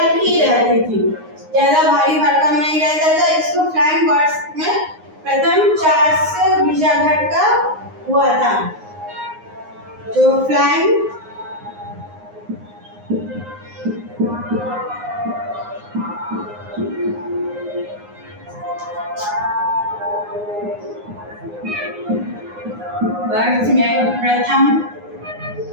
रहती थी, ज्यादा भारी भरकम नहीं रहता था। इसको फ्लाइंग वर्ड्स में प्रथम चार्ल्स गिरजाघर का हुआ था। जो फ्लाइंग वर्ड्स में प्रथम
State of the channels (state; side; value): late; left; 9.6 ms